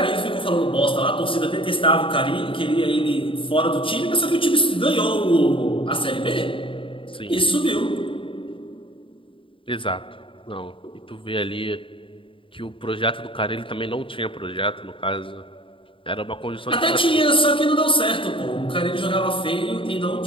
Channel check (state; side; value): late; right; 0.25 ms